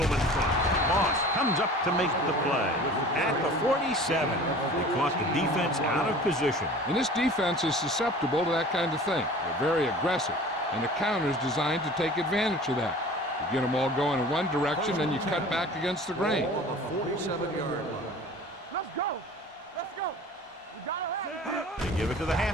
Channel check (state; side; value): normal; both; correlation 0.42